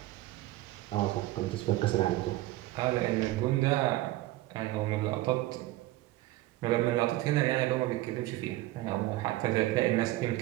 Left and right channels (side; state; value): left; quieter; 17.2 dB